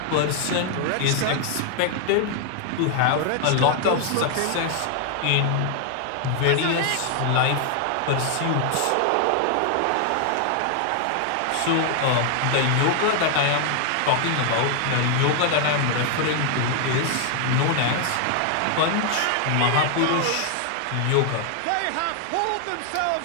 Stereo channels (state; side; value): different; both; correlation 0.00